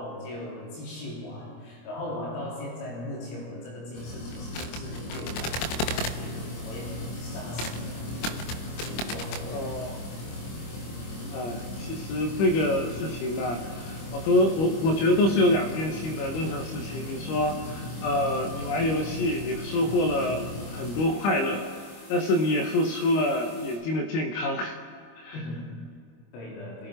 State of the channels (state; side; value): late; right; 25 ms